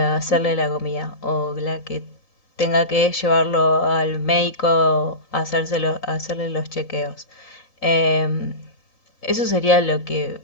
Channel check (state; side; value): late; right; 3.9 ms